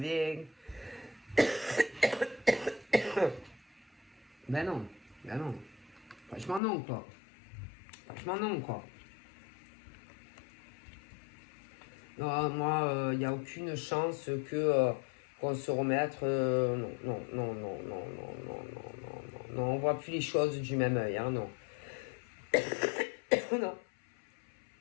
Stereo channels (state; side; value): drops out; right; at 6.6 s